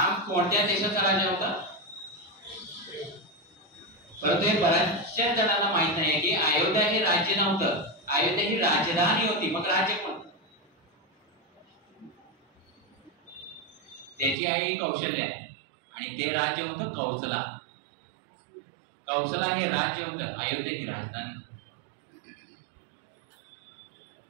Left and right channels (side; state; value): left; drops out; at 14.4 s